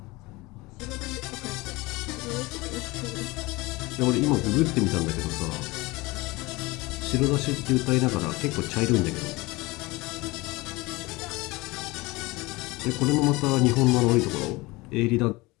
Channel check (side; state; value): right; quieter; 22.4 dB